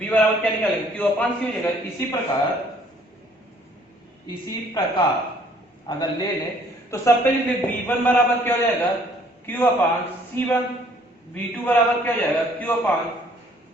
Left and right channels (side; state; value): both; normal; correlation 0.60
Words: बराबर क्या निकालेंगे, Q अपान C हो जाएगा। इसी प्रकार अगर ले लें तो सबसे पहले V1 बराबर क्या हो जाएगा, Q अपान C1, V2 बराबर क्या हो जाएगा, Q अपान